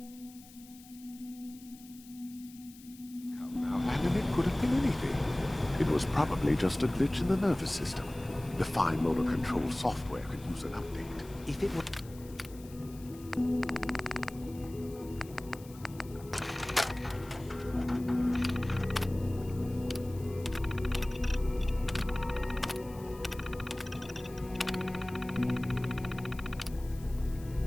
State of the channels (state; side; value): noise; left; hiss, 21 dB below the sound